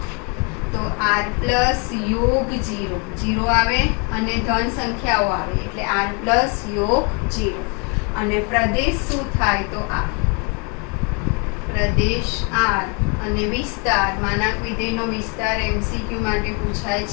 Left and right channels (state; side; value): quieter; right; 34.2 dB